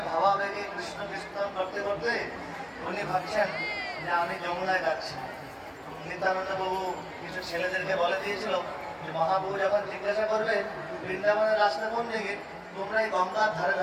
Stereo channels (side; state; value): both; identical; correlation 1.00